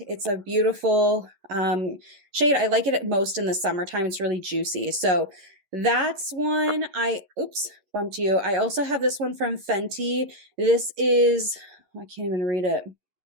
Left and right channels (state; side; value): late; left; 11 ms